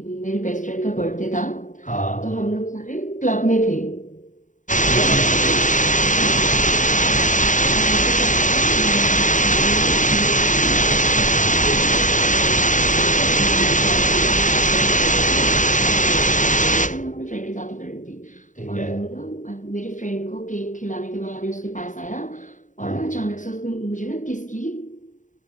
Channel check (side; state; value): right; late; 0.37 ms